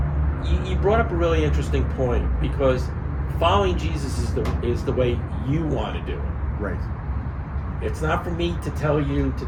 you brought up a really interesting point, because following Jesus is the way you want to do it. Right. It's not for me to tell you to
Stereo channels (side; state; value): both; identical; correlation 1.00